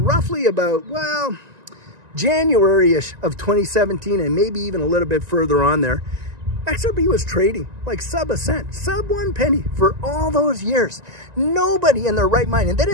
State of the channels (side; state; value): left; late; 1.9 ms